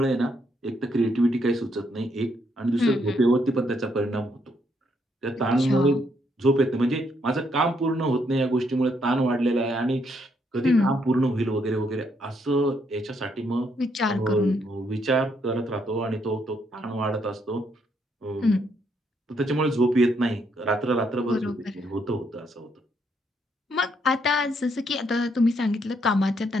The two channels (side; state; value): both; normal; correlation 0.74